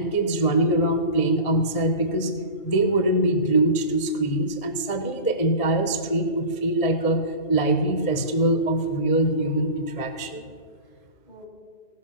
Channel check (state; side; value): late; right; 1.8 ms